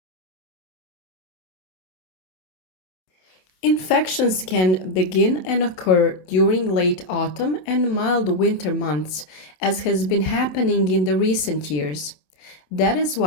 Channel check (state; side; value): late; right; 27 ms